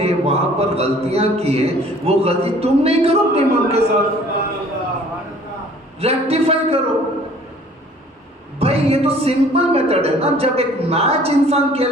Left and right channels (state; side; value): normal; both; correlation 0.53